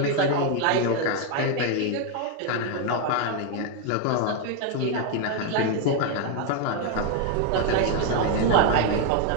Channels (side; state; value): both; different; correlation 0.01